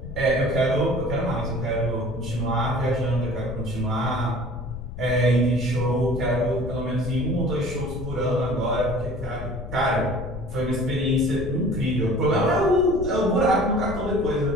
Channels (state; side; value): noise; left; rumble, 9 dB below the sound